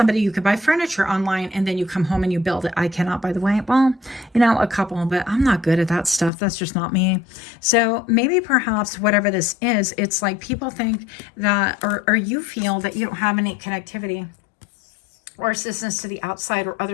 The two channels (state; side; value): drops out; right; at 6.3 s